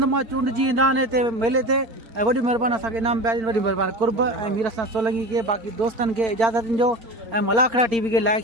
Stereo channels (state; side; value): late; left; 4.3 ms